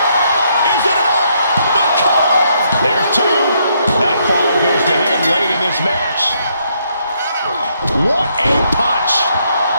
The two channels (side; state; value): both; inverted; correlation -0.73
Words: Is it enough? The cover! There's two. That fall goes to him late in this match. What a punch!